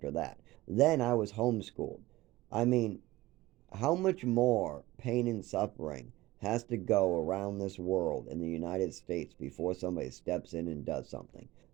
that. Then I was homeschooled. I mean, How much more pain and suffering has to go around this world in the United States before somebody steps in and does something?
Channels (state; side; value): quieter; left; 18.3 dB